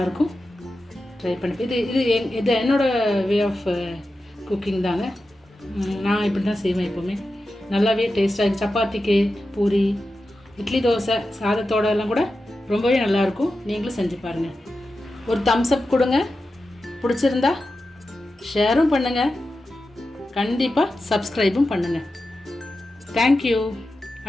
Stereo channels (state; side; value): normal; both; correlation 0.92